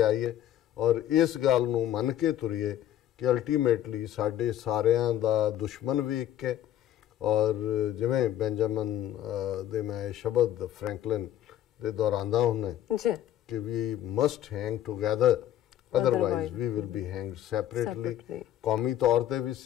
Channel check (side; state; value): right; quieter; 11.9 dB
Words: ਔਰ ਇਸ ਗੱਲ ਨੂੰ ਮੰਨ ਕੇ ਤੁਰੀਏ ਕਿ ਅਲਟੀਮੇਟਲੀ ਸਾਡੇ ਸਾਰਿਆਂ ਦਾ ਦੁਸ਼ਮਣ ਵੀ ਇੱਕ ਹੈ। ਔਰ ਜਿਵੇਂ ਬੈਂਜਾਮਨ ਦੇ ਮੈਂ ਸ਼ਬਦ ਫਰੈਂਕਲਿਨ ਦੇ ਦੁਹਰਾਉਂਦਾ ਹੁੰਦਾ ਕਿ we must hang together, otherwise we will be hanged separately. ਕੌਮੀ ਤੌਰ ਤੇ ਵੀ